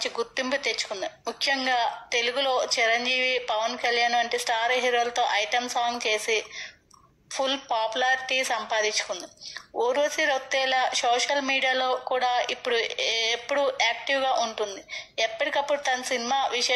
గుర్తింపు తెచ్చుకుంది. ముఖ్యంగా తెలుగులో చిరంజీవి, పవన్ కళ్యాణ్ వంటి స్టార్ హీరోలతో ఐటెం సాంగ్ చేసి ఫుల్ పాపులారిటీ సంపాదించుకుంది. ఊర్వశి రౌతేలా సోషల్ మీడియాలో కూడా ఎప్పుడు యాక్టివ్గా ఉంటుంది. ఎప్పటికప్పుడు తన సినిమా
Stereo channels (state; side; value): identical; both; correlation 1.00